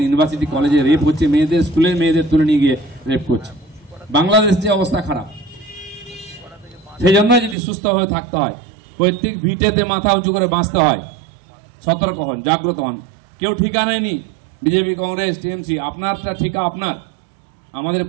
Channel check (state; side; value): drops out; left; at 7.6 s